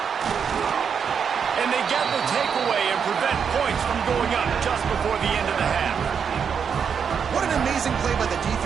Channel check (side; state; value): left; quieter; 6.9 dB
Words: And they get the takeaway and prevent points from going up just before the end of the half. What an amazing play by the